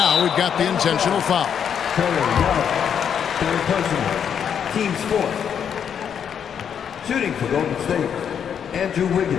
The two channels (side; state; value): right; quieter; 8.0 dB